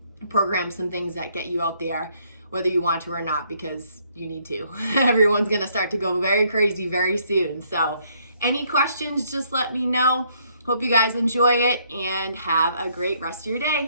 program some things that get you out there, whether you want to or not, because you need to. Everyone's gonna start to go very crazy very soon. So any questions, just let me know. Hope you guys enjoy it and have a great rest of your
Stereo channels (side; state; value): both; inverted; correlation -0.68